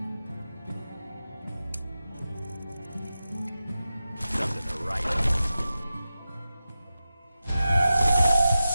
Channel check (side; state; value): both; inverted; correlation -0.92